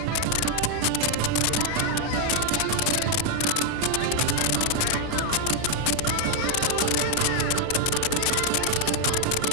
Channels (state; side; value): different; both; correlation 0.00